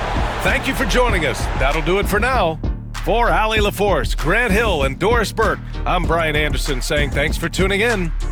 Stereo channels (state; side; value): identical; both; correlation 1.00